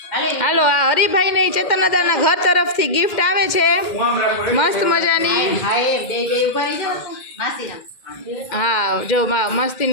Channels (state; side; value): late; right; 2.1 ms